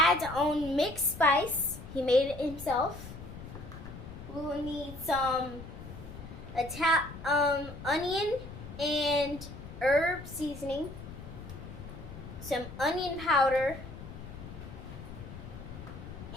own mixed spice, he made it himself. We will need some onion and herb seasoning, some onion powder,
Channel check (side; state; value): left; noise; rumble, 12 dB below the sound